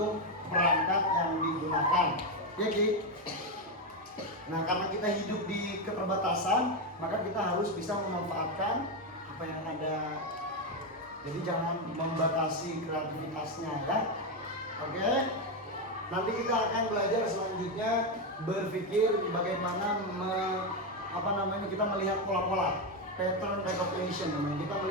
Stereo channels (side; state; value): both; normal; correlation 0.08